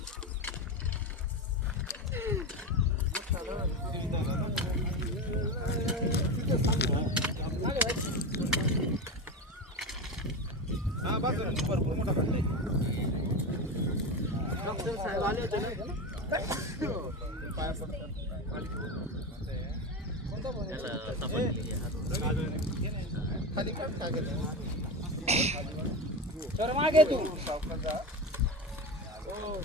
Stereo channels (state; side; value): normal; both; correlation 0.20